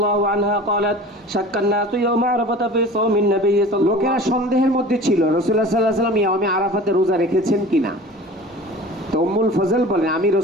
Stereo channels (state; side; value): normal; both; correlation 0.40